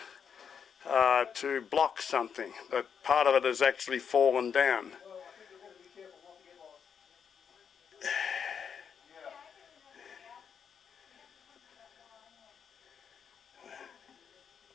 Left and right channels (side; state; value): right; quieter; 7.0 dB